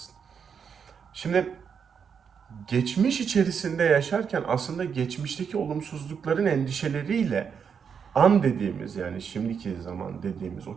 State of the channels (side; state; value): left; quieter; 6.8 dB